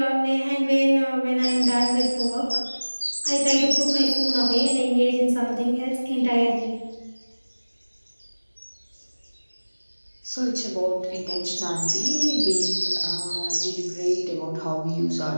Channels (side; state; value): both; inverted; correlation -1.00